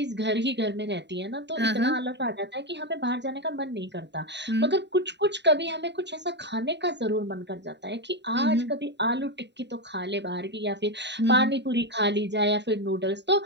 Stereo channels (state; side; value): late; left; 0.51 ms